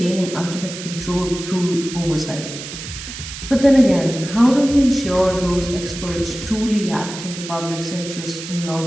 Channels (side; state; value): right; noise; hiss, 10 dB below the sound